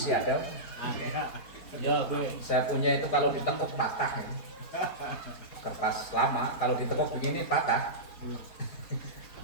ada. Ya gue. Saya punya itu kalau ditekuk patah ya. Kertas lama kalau ditekuk begini patah.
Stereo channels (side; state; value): right; late; 4.5 ms